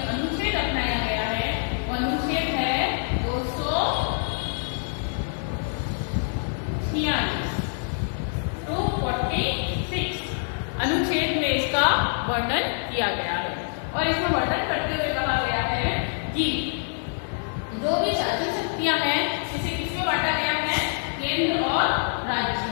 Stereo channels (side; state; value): right; silent; digital silence